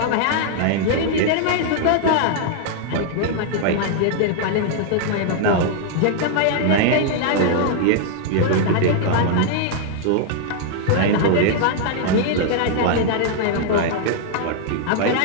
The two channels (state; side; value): different; both; correlation 0.00